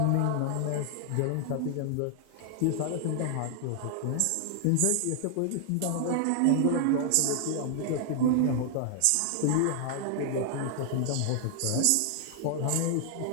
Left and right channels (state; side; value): different; both; correlation 0.00